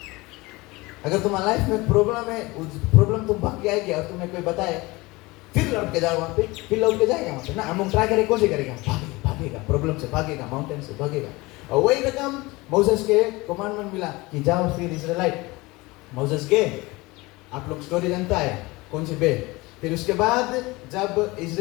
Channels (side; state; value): right; quieter; 22.4 dB